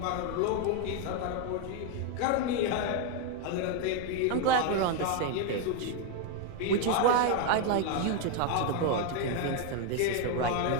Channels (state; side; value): different; both; correlation 0.01